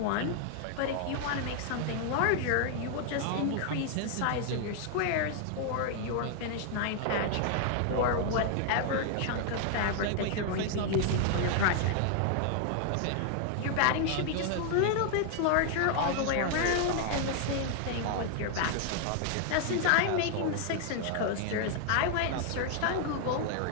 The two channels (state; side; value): different; both; correlation 0.00